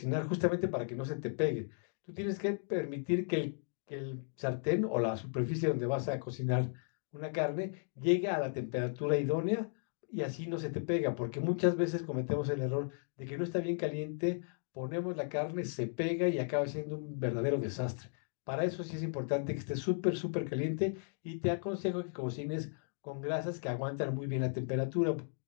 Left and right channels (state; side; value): silent; right; digital silence